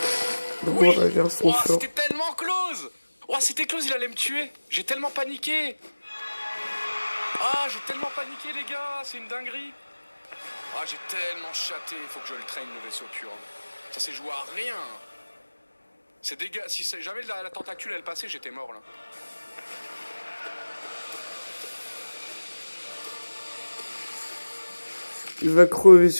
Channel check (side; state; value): both; inverted; correlation -1.00